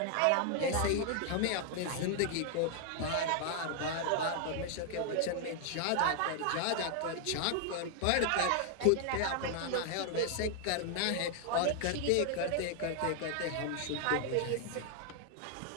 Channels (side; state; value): both; different; correlation 0.00